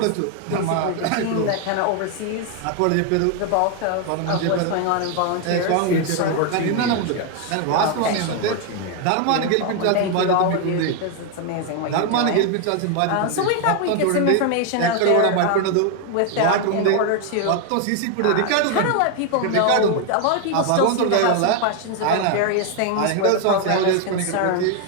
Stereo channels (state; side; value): different; both; correlation 0.01